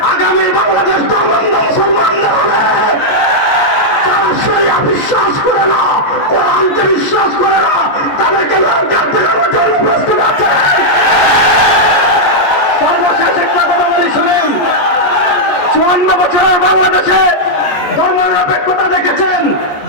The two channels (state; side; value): late; right; 14 ms